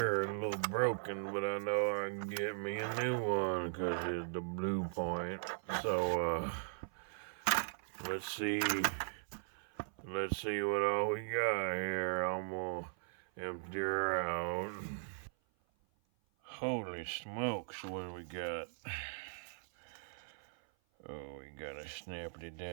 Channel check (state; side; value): silent; left; 52 dB below the other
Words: a little broken, but I know I can get me a new one because it's the blue point. So let's see what all we got here. I'm gonna empty her out. Holy smokes, what do we got? Oh, we got a snappity